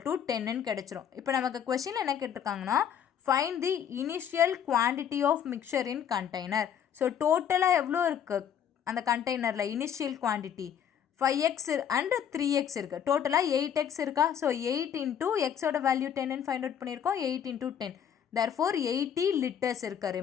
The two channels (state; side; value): quieter; right; 8.8 dB